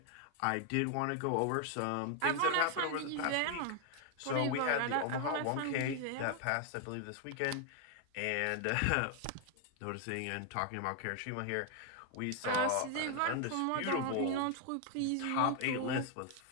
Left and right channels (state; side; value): different; both; correlation 0.00